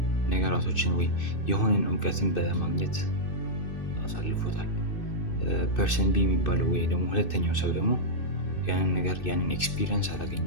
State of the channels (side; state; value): right; late; 2.6 ms